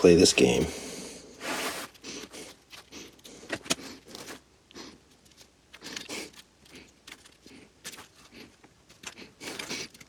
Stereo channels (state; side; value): identical; both; correlation 1.00